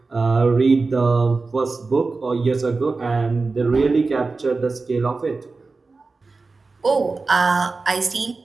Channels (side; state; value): left; quieter; 3.9 dB